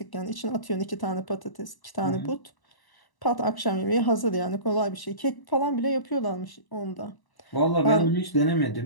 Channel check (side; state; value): right; late; 1.0 ms